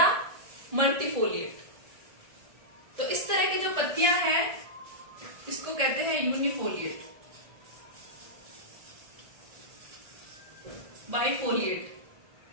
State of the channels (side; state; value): left; late; 1.4 ms